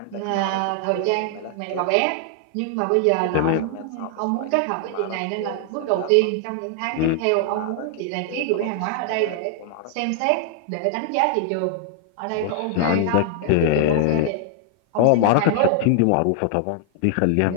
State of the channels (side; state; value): both; different; correlation 0.00